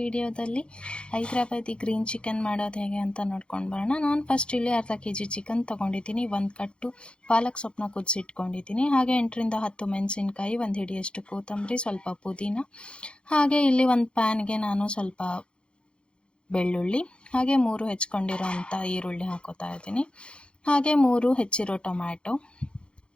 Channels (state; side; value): late; right; 0.055 ms